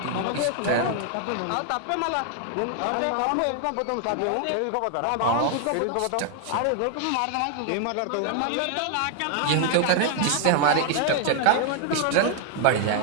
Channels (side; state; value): both; different; correlation 0.00